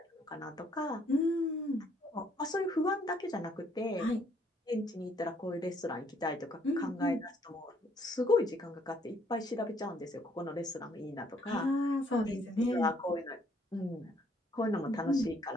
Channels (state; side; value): normal; both; correlation 0.66